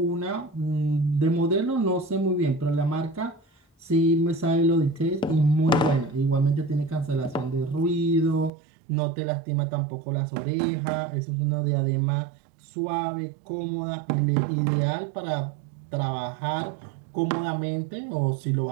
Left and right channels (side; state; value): left; drops out; at 8.5 s